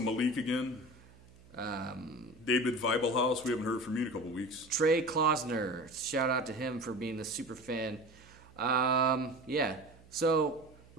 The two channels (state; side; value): noise; right; hum, 25 dB below the sound